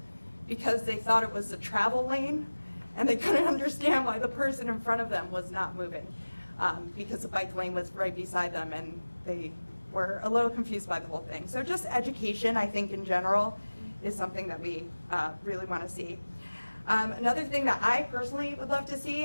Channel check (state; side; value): inverted; both; correlation -1.00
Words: because they thought it was a travel lane and they couldn't understand why the person in front of them was not moving because the bike lane was right beside them and they were a little confused by the whole thing. So just education, I think, in general is something that we really want to see. Another thing that I personally would love to see,